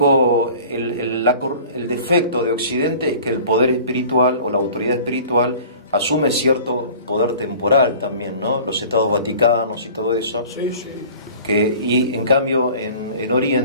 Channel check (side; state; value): both; inverted; correlation -0.44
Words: el defecto de Occidente es que el poder espiritual o la autoridad espiritual asume cierto poder temporal también, ¿no? Los estados vaticanos y todo eso. Sí. Y en cambio en